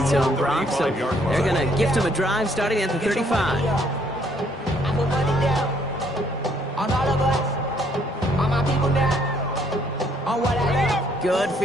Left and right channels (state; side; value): normal; both; correlation 0.67